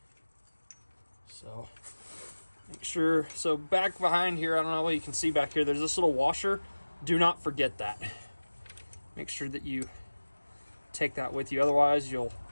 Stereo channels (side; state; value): both; inverted; correlation -1.00